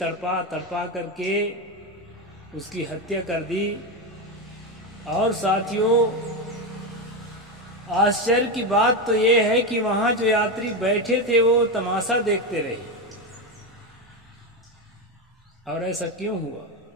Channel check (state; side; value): normal; both; correlation 0.13